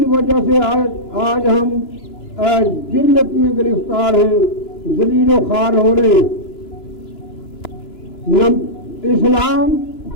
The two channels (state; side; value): late; right; 2.9 ms